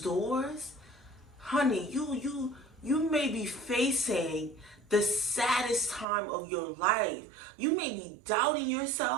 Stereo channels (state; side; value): drops out; left; at 6.1 s